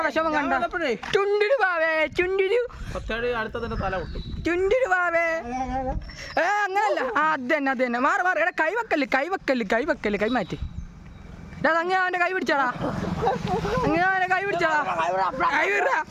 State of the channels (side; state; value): both; identical; correlation 1.00